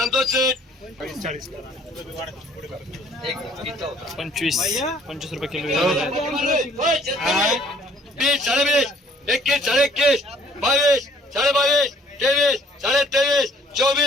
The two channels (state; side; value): normal; both; correlation 0.59